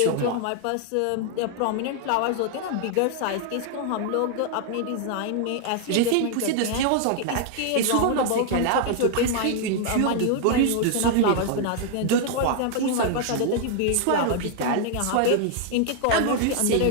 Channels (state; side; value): different; both; correlation 0.00